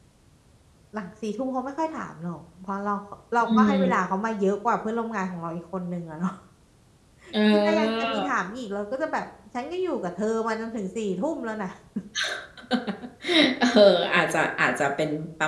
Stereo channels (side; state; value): both; identical; correlation 1.00